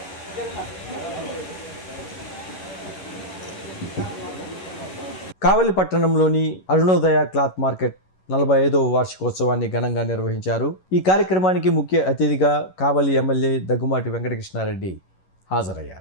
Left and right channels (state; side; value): late; right; 11 ms